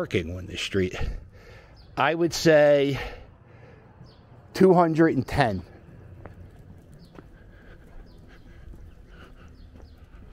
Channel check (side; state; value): both; identical; correlation 1.00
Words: on this street. I would say 210.